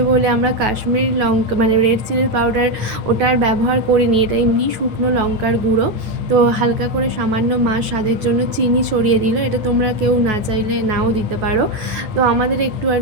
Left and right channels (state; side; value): late; left; 9.3 ms